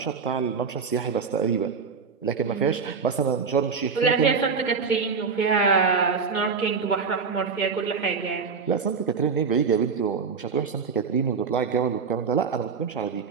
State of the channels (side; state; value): left; quieter; 5.6 dB